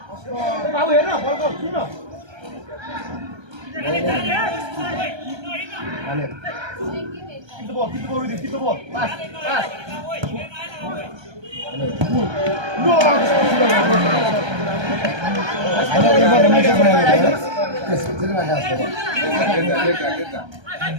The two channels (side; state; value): left; late; 1.3 ms